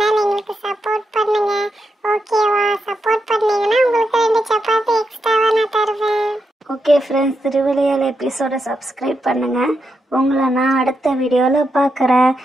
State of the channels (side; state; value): both; normal; correlation 0.84